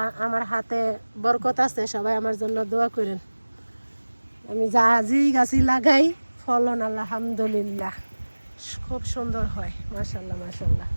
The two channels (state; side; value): inverted; both; correlation -1.00